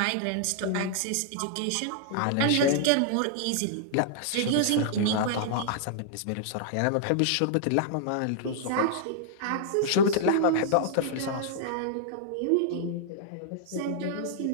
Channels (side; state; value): both; different; correlation -0.01